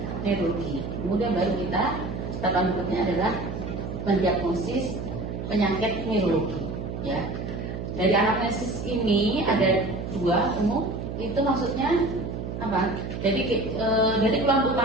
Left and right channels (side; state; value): right; noise; hum, 6 dB below the sound